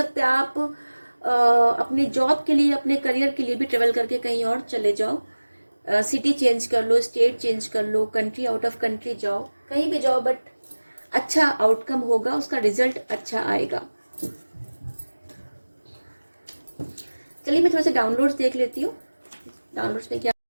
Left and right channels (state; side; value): inverted; both; correlation -1.00